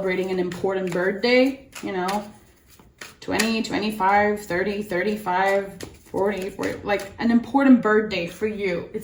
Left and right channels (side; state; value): both; identical; correlation 1.00